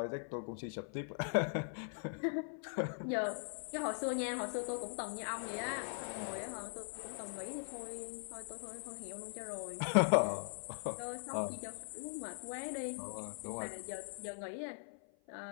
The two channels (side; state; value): right; silent; 50 dB below the other